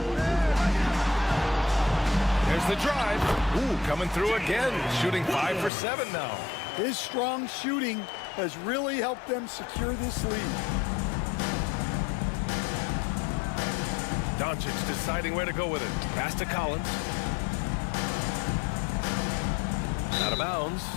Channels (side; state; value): right; drops out; at 5.7 s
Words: There's the drive. Ooh, coming through again. Shooting 5 for 7 now. His strong shooting has really helped them secure this lead. Doncic deciding where to go with it. Pass to Collins. Out of bounds